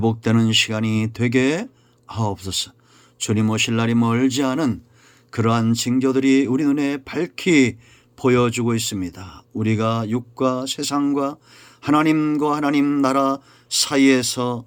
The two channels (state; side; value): identical; both; correlation 1.00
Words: 시간이 되게 하옵소서. 주님 오실 날이 멀지 않은 그러한 징조들이 우리 눈에 밝히 보여주고 있습니다. 우리가 육과 세상과 하나님과 하나님 나라 사이에서